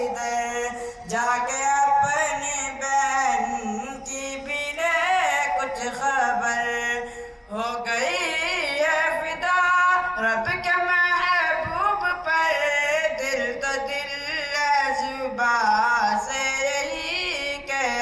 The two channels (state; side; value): identical; both; correlation 1.00